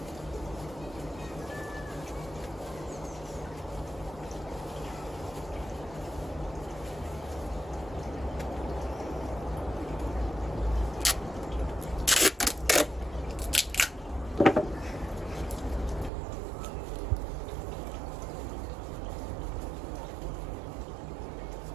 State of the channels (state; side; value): drops out; left; at 16.1 s